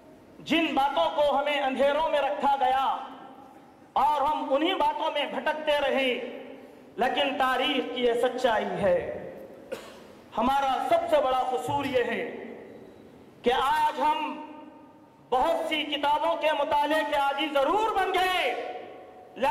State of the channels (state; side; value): identical; both; correlation 1.00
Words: جن باتوں کو ہمیں اندھیروں میں رکھا گیا اور ہم انہی باتوں میں بھٹکتے رہے، لیکن تاریخ کی یہ سچائی ہے۔ ہمارا سب سے بڑا قصور یہ ہے کہ آج ہم بہت سی کتابوں کے مطالعے کے عادی ضرور بن گئے،